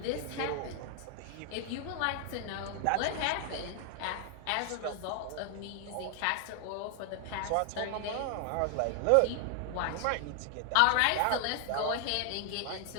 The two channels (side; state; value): both; different; correlation 0.00